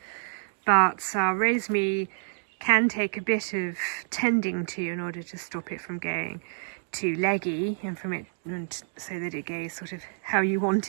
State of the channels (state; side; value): silent; left; digital silence